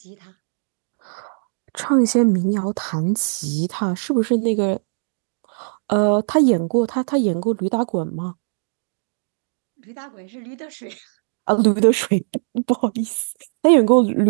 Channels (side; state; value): left; silent; digital silence